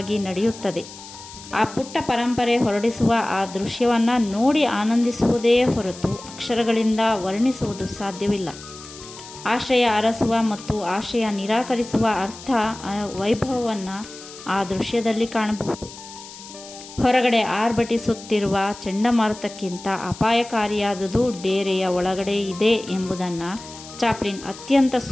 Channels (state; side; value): noise; left; hiss, 16 dB below the sound